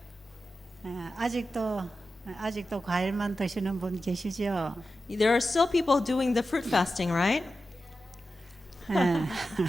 아직도 과일만 드시는 분 계시죠? There are still people doing the fruit fasting, right?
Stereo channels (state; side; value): normal; both; correlation 0.92